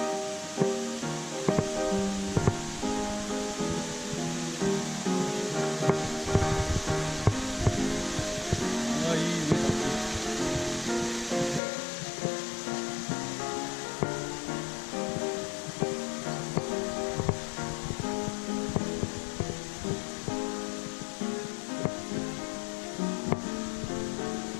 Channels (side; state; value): right; drops out; at 11.6 s